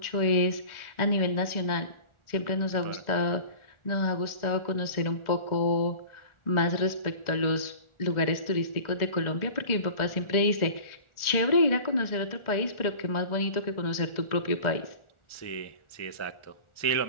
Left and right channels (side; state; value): right; late; 1.4 ms